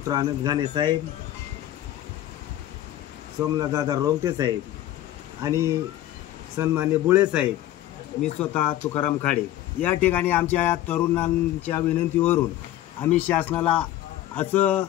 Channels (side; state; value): right; quieter; 13.6 dB